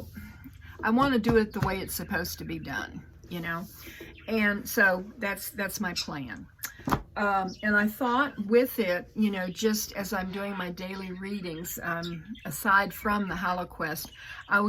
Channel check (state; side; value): identical; both; correlation 1.00